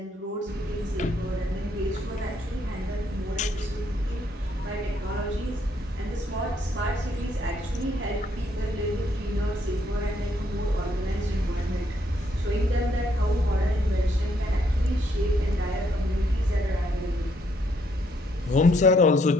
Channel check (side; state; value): both; normal; correlation 0.71